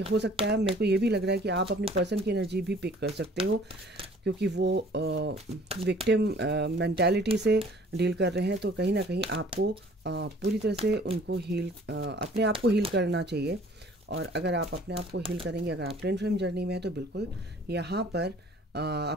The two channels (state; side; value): normal; both; correlation 0.53